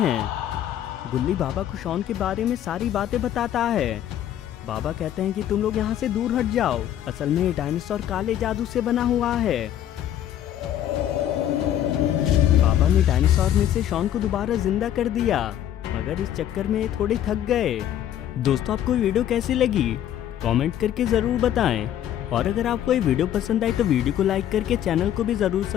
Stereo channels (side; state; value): right; quieter; 11.1 dB